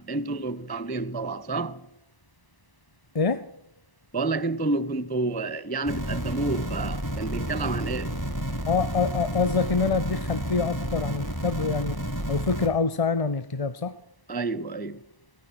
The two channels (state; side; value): late; right; 1.0 ms